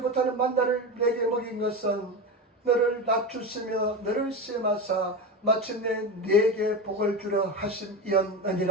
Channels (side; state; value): both; normal; correlation 0.21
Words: 못하는 만나를 내게 먹인 것은 너를 낮추시며 너를 시험하사 마침내 내게 복을 주려